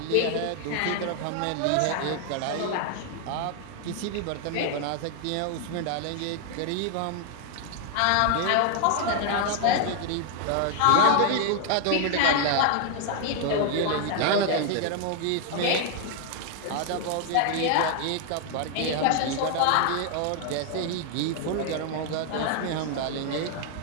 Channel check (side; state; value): both; different; correlation 0.00